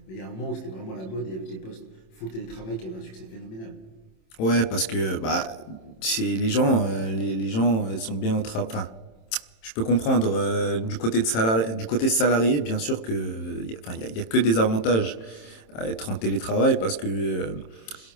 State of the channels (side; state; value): right; late; 27 ms